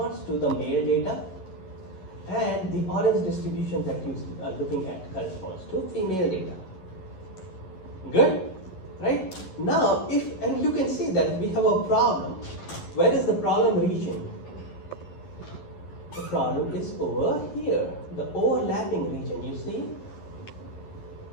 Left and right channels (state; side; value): late; right; 11 ms